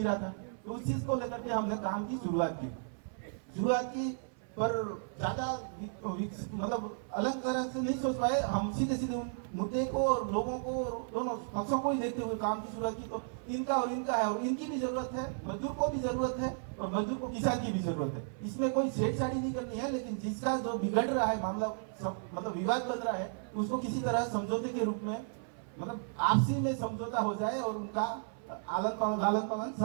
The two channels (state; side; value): silent; left; 55 dB below the other